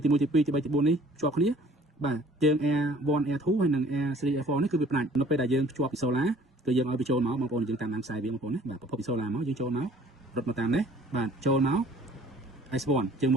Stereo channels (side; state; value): both; normal; correlation 0.54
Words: ទី3ទី4នេះភ្ជាប់គ្នាបាទជើង Air1 Air2 ហើយនិង Air3 Air4 នេះគឺវាផ្ដាច់នៅពេលដែលយើងភ្ជាប់ពីសូឡាគឺយើងឲ្យវាចូលមកបងប្អូនយើងតាមដានខ្សែវាបងប្អូនណាបាទប្រភពពីសូឡាមកយើងចូលមករត់មកតាមនេះបាទចូលមក S1 ជើង